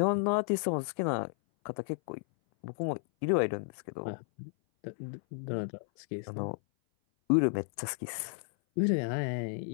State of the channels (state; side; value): silent; right; 56 dB below the other